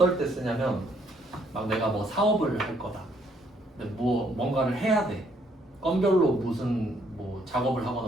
때 쓰냐면, 막 내가 뭐 사업을 할 거다. 근데 뭐 뭔가를 해야 돼. 건별로 무슨 뭐 작업을 하거나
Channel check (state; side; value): normal; both; correlation 0.68